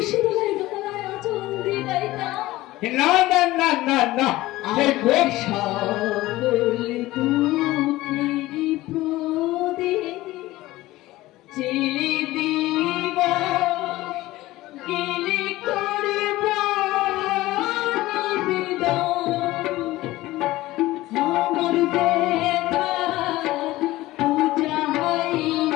তলায় গলায় আঁচল দিয়ে গাইতাম। না না না না না সেই কোন সকল দুঃখেরই প্রদীপ জেলে দিব গেলে করব নিবেদন। আমার ব্যথা পূজা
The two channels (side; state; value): right; quieter; 17.6 dB